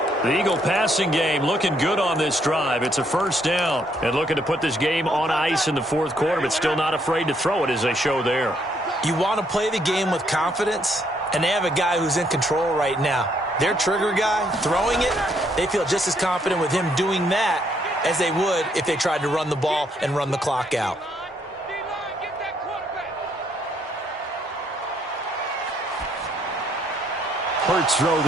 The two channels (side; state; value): both; normal; correlation 0.71